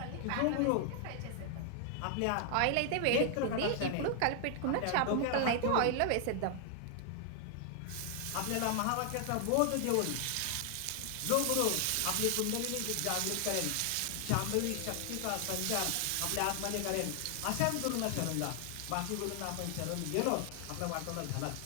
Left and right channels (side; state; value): both; different; correlation 0.00